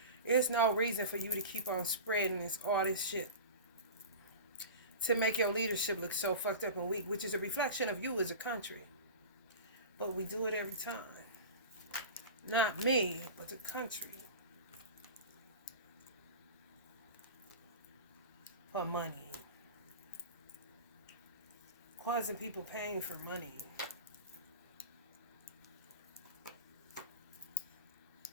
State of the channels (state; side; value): inverted; both; correlation -0.32